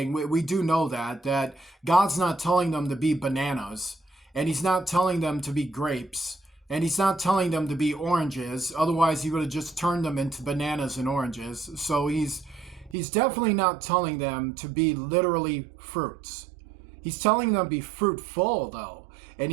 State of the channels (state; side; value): drops out; left; at 13.0 s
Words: We do know that God's not telling them to be bananas, and he's not telling them to be grapes, and he's not telling them to be oranges. Otherwise, he would have just turned them into bananas and oranges. So he's definitely not telling them to be literally fruits. He's telling them to be fruitful, though. And